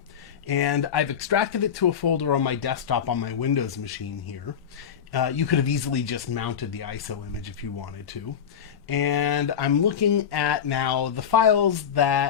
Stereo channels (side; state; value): right; quieter; 8.1 dB